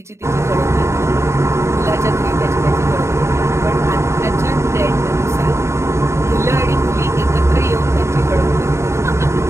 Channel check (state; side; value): late; left; 0.13 ms